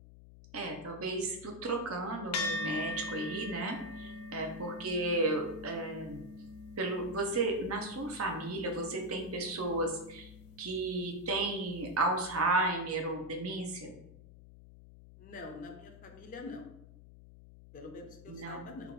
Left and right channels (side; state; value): left; noise; hum, 18 dB below the sound